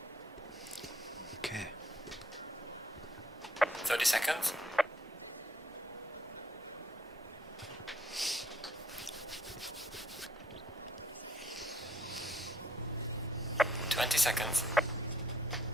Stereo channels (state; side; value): normal; both; correlation 0.66